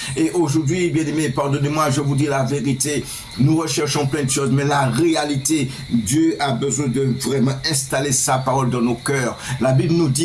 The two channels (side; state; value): both; identical; correlation 1.00